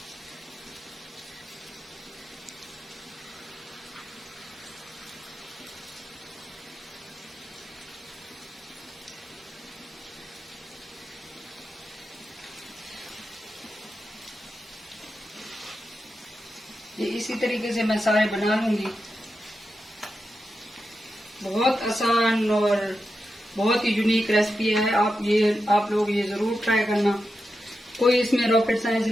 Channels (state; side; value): normal; both; correlation 0.89